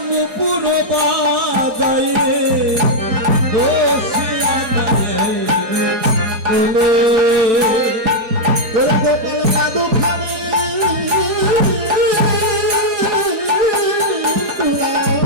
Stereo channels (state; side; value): late; left; 4.8 ms